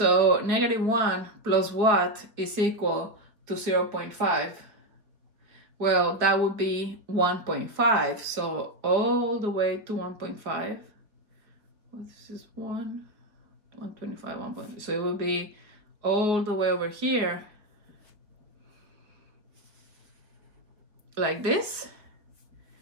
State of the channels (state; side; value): late; left; 4.5 ms